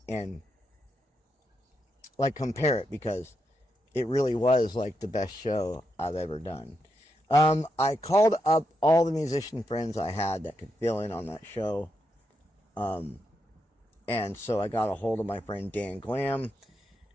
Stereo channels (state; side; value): normal; both; correlation 0.83